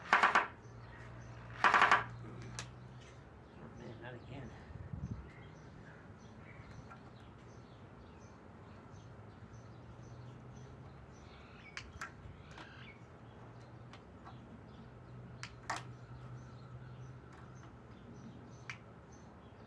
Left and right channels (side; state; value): both; identical; correlation 1.00